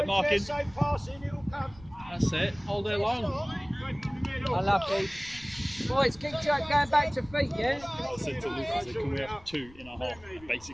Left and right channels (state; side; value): noise; left; rumble, 22 dB below the sound